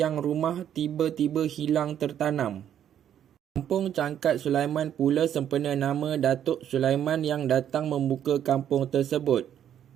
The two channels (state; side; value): quieter; left; 9.9 dB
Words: rumah tiba-tiba hilang tertanam. Kampung Cangkat Sulaiman pula sempena nama Datuk Sulaiman yang datang membuka kampung tersebut.